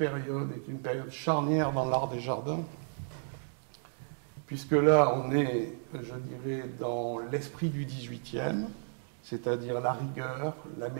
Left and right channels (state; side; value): silent; left; digital silence